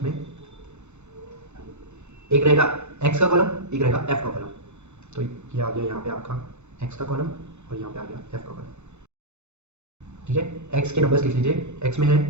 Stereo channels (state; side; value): late; left; 0.83 ms